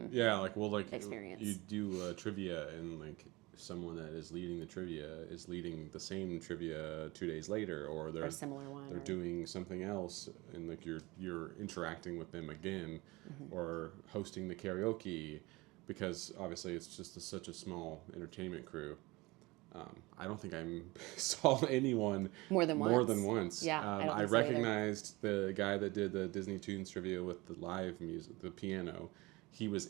experience. You do trivia and like someone that is leading the trivia is leading the same trivia 2 days later, or they're a similar one, they're doing something else, and like you're interacting with them again, or hosting the karaoke, because obviously it's just such a small entertainment crew. I don't think I saw anyone more than once. Yeah, I recognized the guy that did the Disney Tunes trivia with the live music, the piano. He was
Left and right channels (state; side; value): quieter; left; 22.5 dB